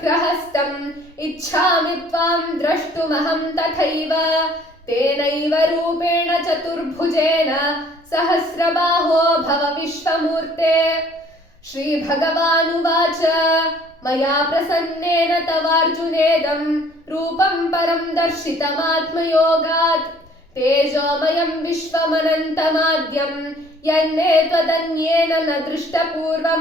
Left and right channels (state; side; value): normal; both; correlation 0.56